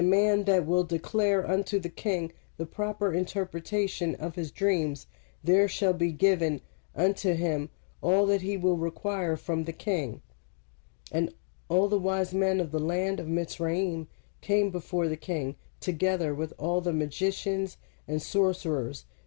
man that will declare unto the king the proper interpretation of his dreams, there shall be given unto him all that he will require from the king. And all the wise men of the land of Mitzrayim came before the king, together with all the magicians and sorcerers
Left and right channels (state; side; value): silent; right; digital silence